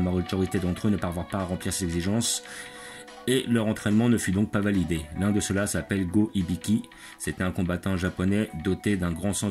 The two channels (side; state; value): both; identical; correlation 1.00